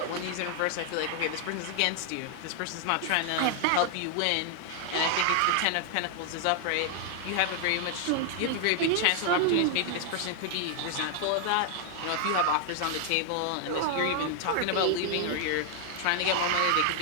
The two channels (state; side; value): different; both; correlation 0.00